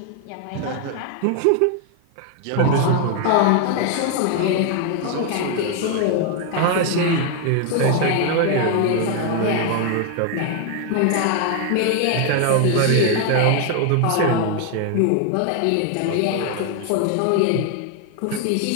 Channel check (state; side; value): different; both; correlation 0.00